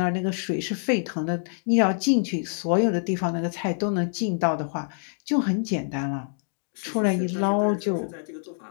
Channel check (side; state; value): right; silent; 61 dB below the other